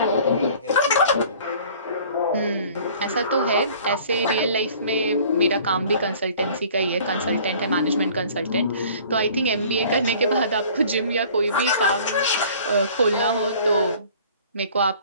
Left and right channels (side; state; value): both; inverted; correlation -0.50